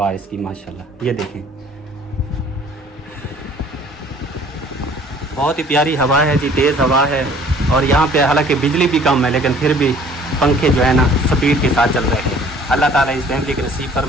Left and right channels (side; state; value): both; normal; correlation 0.54